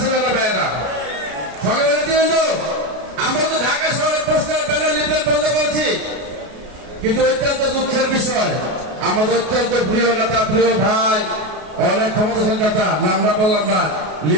না ভাইয়েরা। সকালে কিন্তু আমরা তো ঢাকা শহরের পোস্টার ব্যানার লিফলেট বন্ধ করছি, কিন্তু অত্যন্ত দুঃখের বিষয় আমাদের অত্যন্ত প্রিয় নেতা, প্রিয় ভাই, অনেক ক্ষমতাশালী নেতা, নামটা বললাম না,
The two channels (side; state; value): left; late; 33 ms